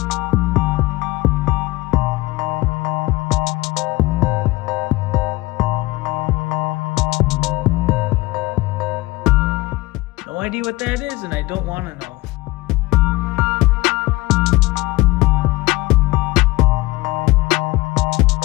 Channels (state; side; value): quieter; right; 20.5 dB